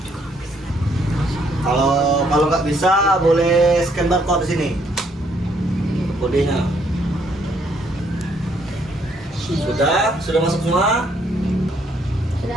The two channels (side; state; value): both; normal; correlation 0.69